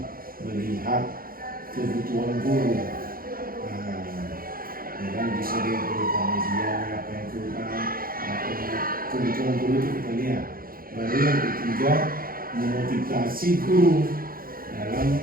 melihat kebutuhan guru. Yang bisa dilihat berupa media, apa yang kurang, apa kebutuhan guru itu kita lihat. Baru yang ketiga, memotivasi guru dalam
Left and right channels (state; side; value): late; left; 0.42 ms